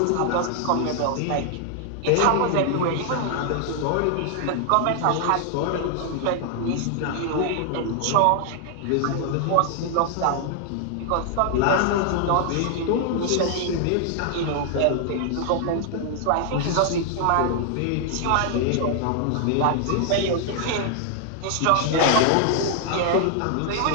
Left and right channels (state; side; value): different; both; correlation 0.00